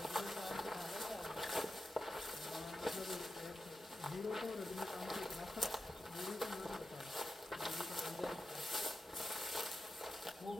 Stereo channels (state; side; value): normal; both; correlation 0.90